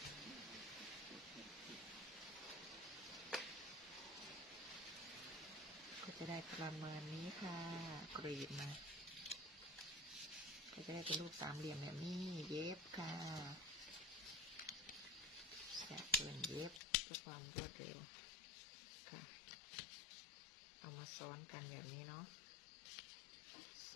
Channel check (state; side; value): drops out; right; at 16.9 s